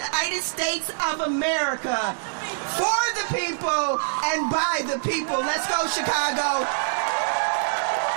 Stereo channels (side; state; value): left; silent; digital silence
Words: States of America for the people and by the people. Let's go, Chicago.